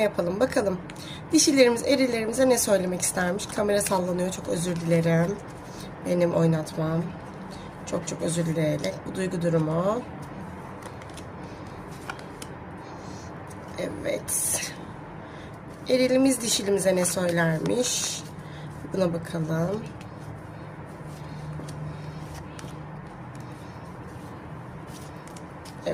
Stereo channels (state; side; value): identical; both; correlation 1.00